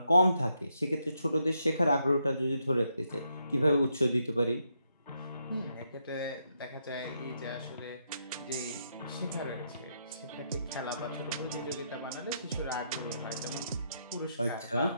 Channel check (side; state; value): both; inverted; correlation -0.79